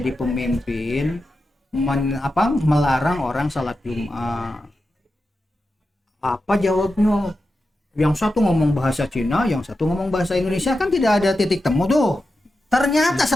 pemimpin melarang orang salat Jumat. Apa jawabnya? Yang satu ngomong bahasa Cina, yang satu ngomong bahasa Indonesia, kan tidak ada titik temu tuh. Ternyata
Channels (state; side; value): normal; both; correlation 0.90